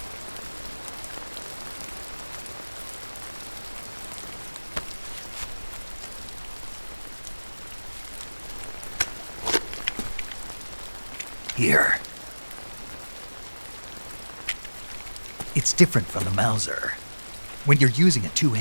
Here. It's different from the Mauser. When you're using a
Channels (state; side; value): inverted; both; correlation -1.00